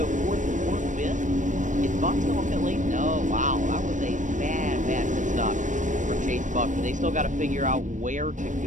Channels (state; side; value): late; left; 0.37 ms